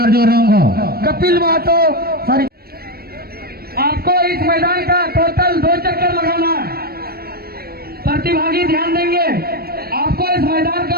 रोंगो। कपिल महतो सॉरी आपको इस मैदान का टोटल 2 चक्कर लगाना है। प्रतिभागी ध्यान देंगे, आपको इस मैदान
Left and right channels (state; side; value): late; left; 0.44 ms